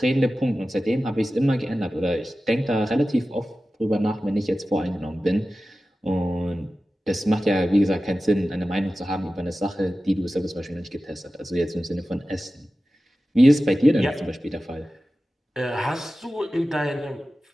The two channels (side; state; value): both; normal; correlation 0.95